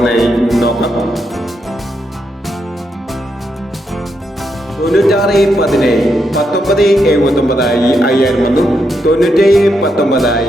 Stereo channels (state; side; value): normal; both; correlation 0.81